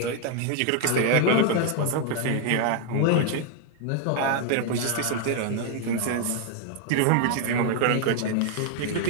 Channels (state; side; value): different; both; correlation 0.00